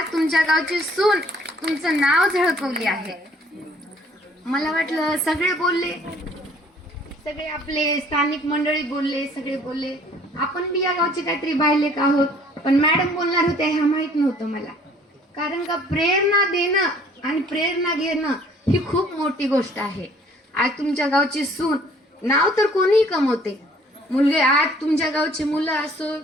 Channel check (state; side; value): normal; both; correlation 0.57